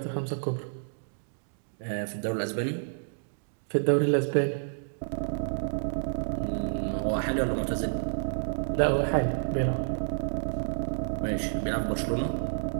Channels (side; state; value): left; silent; digital silence